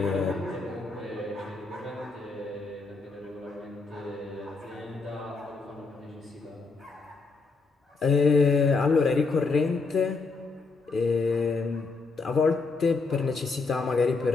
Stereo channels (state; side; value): quieter; right; 4.1 dB